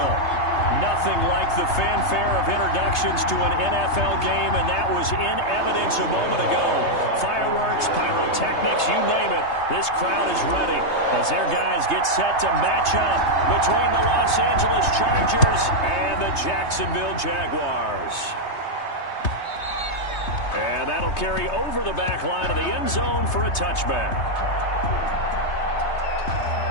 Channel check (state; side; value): late; right; 3.3 ms